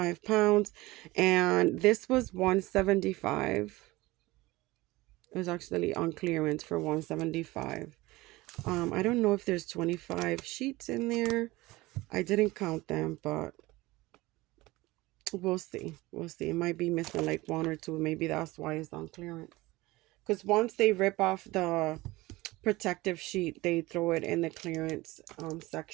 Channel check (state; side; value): quieter; left; 20.1 dB